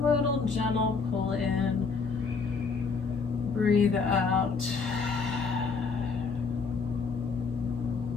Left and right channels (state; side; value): quieter; right; 4.9 dB